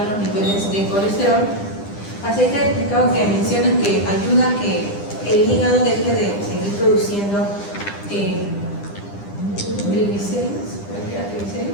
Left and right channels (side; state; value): right; late; 10 ms